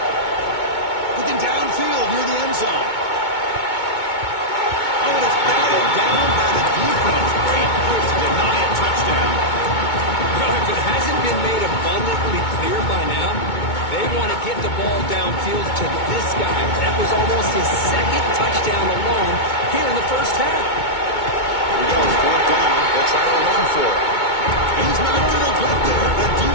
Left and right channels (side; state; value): right; late; 2.2 ms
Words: Looking downfield near the end zone. Oh, and it's batted down by the defense. Great move to deny a touchdown. Well, if it hasn't been made abundantly clear by now, they want to get the ball downfield to this guy. That was almost his 2nd touchdown alone here in the first half. Here we go, 4th down. They'll try to run for it. He's not going to get there. The